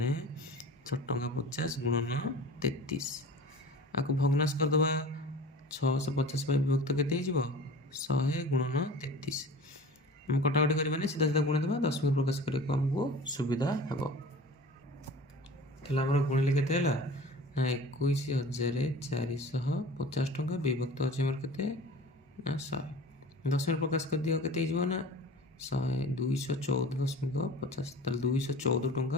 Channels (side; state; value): both; normal; correlation 0.39